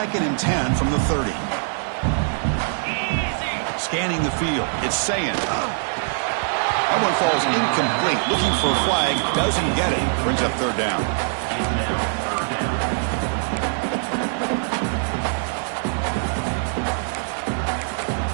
and 10 from the 30. Scanning the field. It's saying. That one falls incomplete. Looking for a flag. Doesn't get it. Brings up third down.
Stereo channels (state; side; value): silent; left; 55 dB below the other